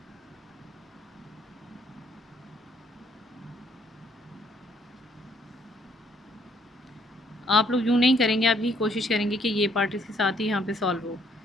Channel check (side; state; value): both; normal; correlation 0.67